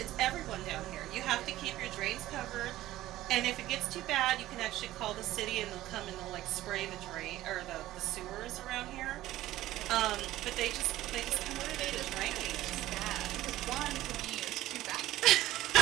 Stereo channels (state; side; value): quieter; left; 15.2 dB